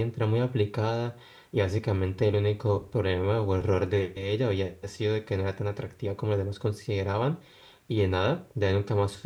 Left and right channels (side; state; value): both; identical; correlation 1.00